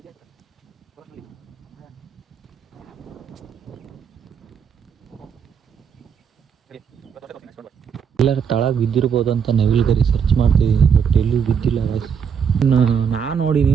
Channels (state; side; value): quieter; left; 7.0 dB